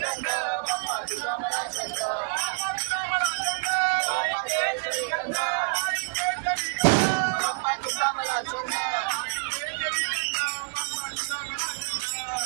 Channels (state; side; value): silent; left; digital silence